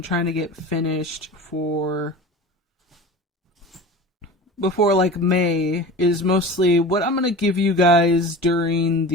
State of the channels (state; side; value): normal; both; correlation 0.34